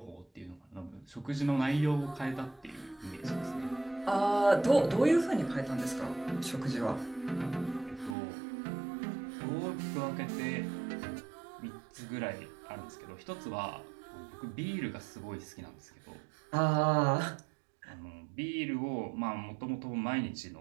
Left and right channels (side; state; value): left; drops out; at 8.2 s